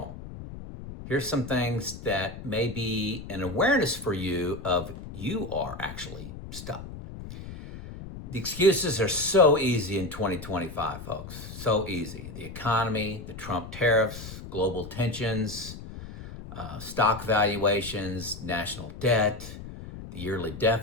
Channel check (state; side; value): noise; left; rumble, 12 dB below the sound